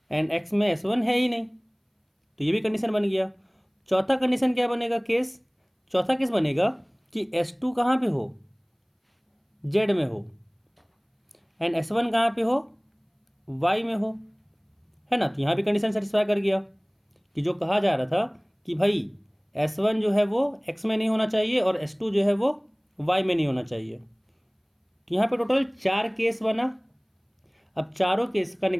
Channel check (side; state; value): both; identical; correlation 1.00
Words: एंड X में S1 है ही नहीं, तो ये भी कंडीशन बन गया। चौथा कंडीशन क्या बनेगा केस, चौथा केस बनेगा कि S2 कहाँ पे हो, Z में हो एंड S1 कहाँ पे हो, Y में हो, है ना। तो यहाँ भी कंडीशन सेटिस्फाई कर गया कि जो कहा जा रहा था कि भाई S1 जो है वो X में नहीं होना चाहिए और S2 जो है वो Y में नहीं होना चाहिए। तो यहाँ पे टोटल 4 केस बना। अब चारों केस का